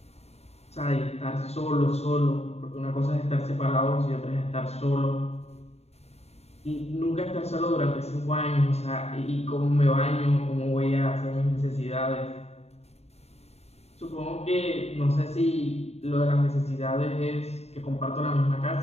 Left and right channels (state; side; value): late; right; 0.30 ms